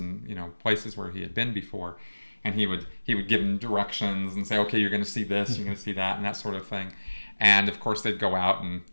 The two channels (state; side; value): inverted; both; correlation -1.00